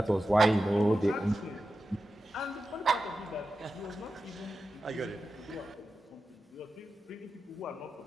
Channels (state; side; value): normal; both; correlation 0.92